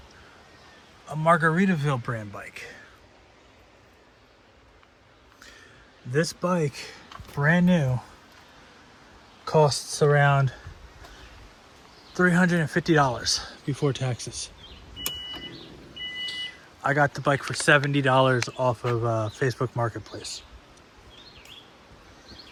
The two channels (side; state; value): both; identical; correlation 1.00